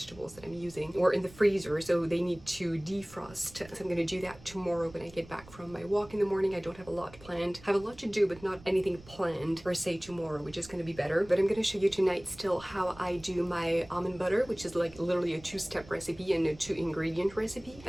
that I'm using were in the freezer, so they need to defrost. So I'm gonna do that tomorrow when I get back from my walk in the morning. I don't have a lot planned. I have a lot to do, but not anything planned per se tomorrow, which is going to be better. But I'm going to show you tonight still how I do my almond butter, which is like literally a 2-step recipe and a 2-ingredient recipe.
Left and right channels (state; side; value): noise; right; rumble, 21 dB below the sound